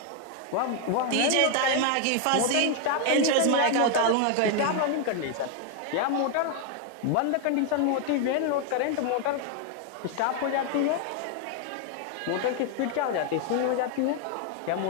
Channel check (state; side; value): different; both; correlation 0.01